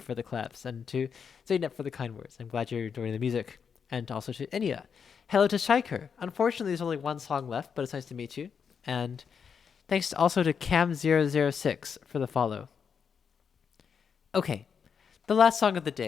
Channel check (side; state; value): right; quieter; 6.6 dB